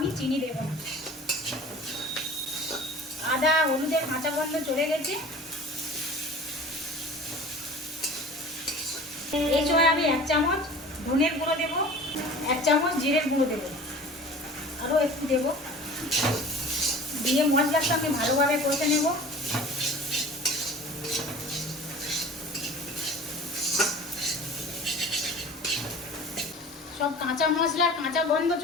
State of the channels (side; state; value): both; normal; correlation 0.41